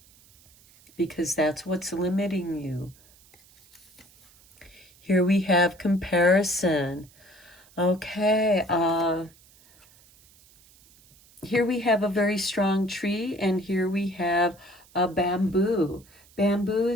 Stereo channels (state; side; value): noise; right; hiss, 28 dB below the sound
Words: Because that's what's limiting you. Here we have comparison. Okay, here we have a very strong tree, and here we have a bamboo. Bamboo